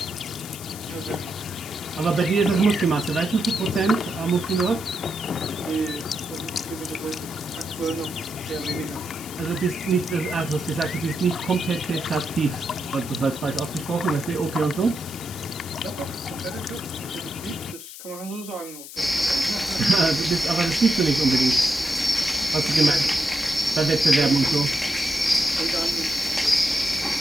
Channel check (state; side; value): noise; left; hiss, 13 dB below the sound